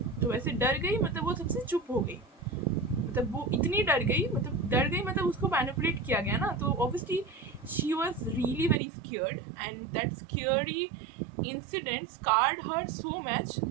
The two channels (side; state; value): left; drops out; at 8.8 s